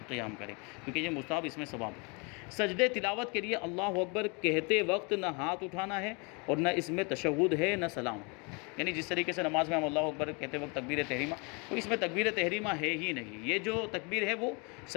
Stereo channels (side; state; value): right; quieter; 31.8 dB